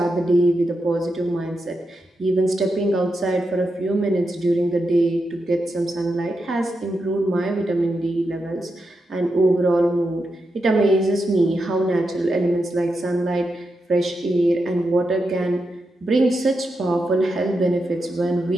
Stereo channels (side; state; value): both; normal; correlation 0.87